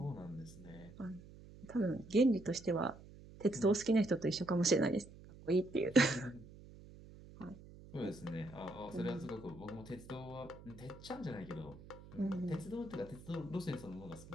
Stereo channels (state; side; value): noise; right; hum, 18 dB below the sound